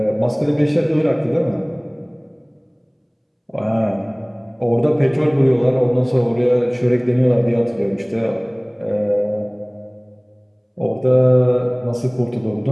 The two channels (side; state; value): both; identical; correlation 1.00